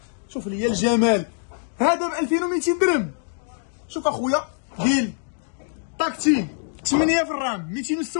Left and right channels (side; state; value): right; silent; digital silence